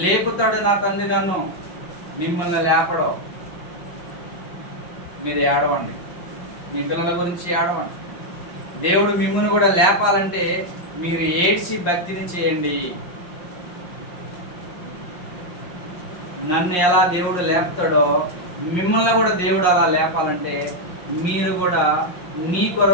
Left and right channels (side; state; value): right; late; 5.6 ms